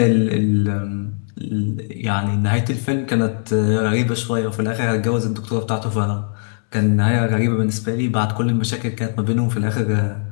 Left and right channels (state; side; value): silent; right; 65 dB below the other